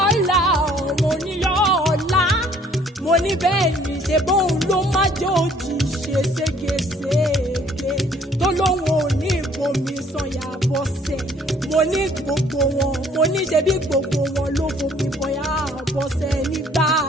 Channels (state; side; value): normal; both; correlation 0.59